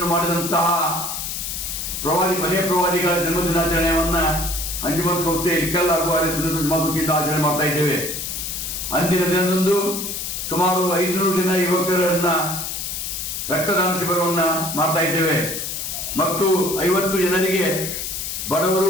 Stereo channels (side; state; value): left; noise; hiss, 4 dB below the sound